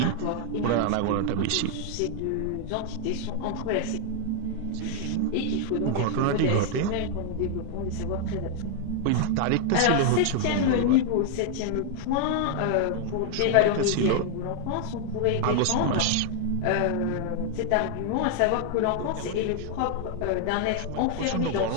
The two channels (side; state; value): both; different; correlation 0.00